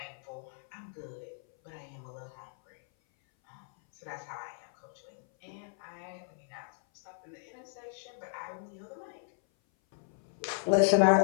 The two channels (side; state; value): right; silent; 55 dB below the other